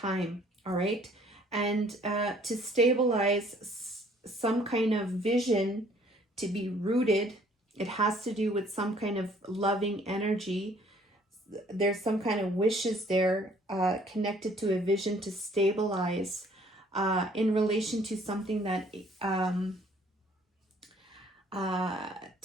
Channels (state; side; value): normal; both; correlation 0.59